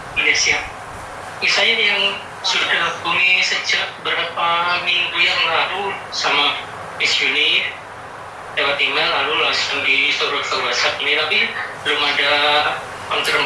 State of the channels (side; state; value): both; identical; correlation 1.00